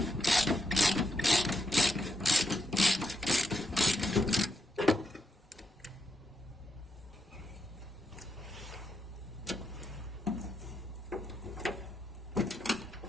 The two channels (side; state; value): both; normal; correlation 0.82